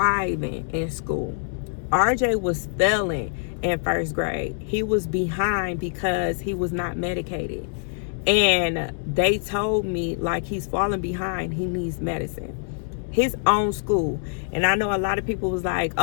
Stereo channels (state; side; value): silent; right; 62 dB below the other